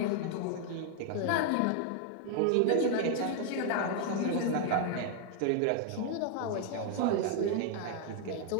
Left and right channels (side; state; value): both; different; correlation 0.00